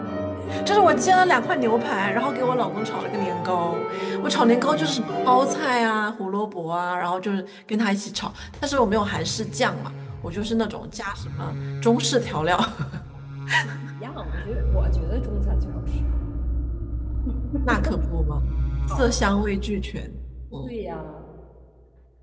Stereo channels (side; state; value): both; identical; correlation 1.00